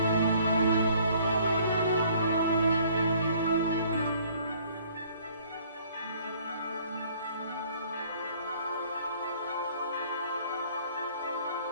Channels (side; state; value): both; inverted; correlation -0.58